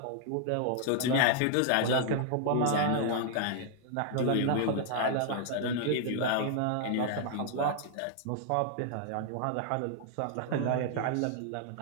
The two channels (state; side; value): different; both; correlation 0.00